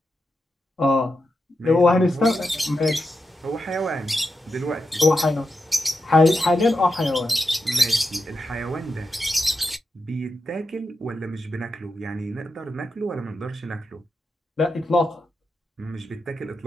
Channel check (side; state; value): both; normal; correlation 0.87